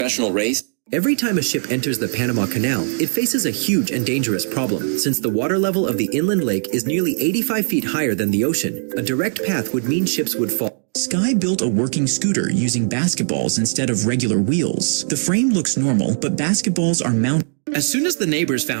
race, every time a ship enters the Panama Canal, it faces a huge and dangerous problem. Since the water level of the inland lake is nearly 85 feet higher than the ocean, a direct path would mean ships would fall. Sky built a working scooter using basketballs instead of regular wheels. The frame looks normal, but basketballs are mounted. As soon as the neighbors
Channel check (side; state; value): left; silent; digital silence